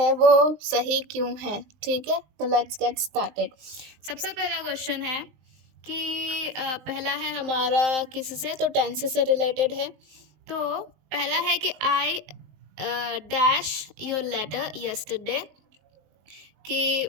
वो सही क्यों है। ठीक है, तो लेट्स गेट स्टार्टेड। सबसे पहला क्वेश्चन है कि पहला है हमारा किससे, तो टेंस से रिलेटेड है। तो पहला है कि I dash your letter yesterday, कि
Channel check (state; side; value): late; left; 19 ms